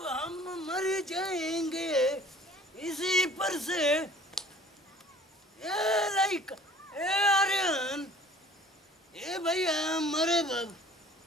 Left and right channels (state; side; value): normal; both; correlation 0.50